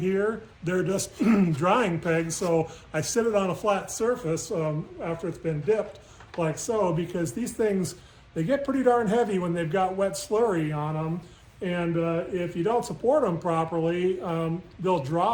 They're just drying pegs, so I sit it on a flat surface after it's been dipped, like so, because these things, they get pretty darn heavy when they've got wet slurry on them. And if you don't support them properly, they'll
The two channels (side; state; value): both; identical; correlation 1.00